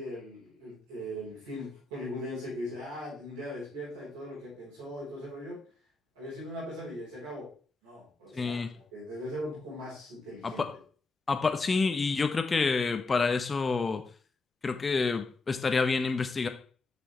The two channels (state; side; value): quieter; right; 3.7 dB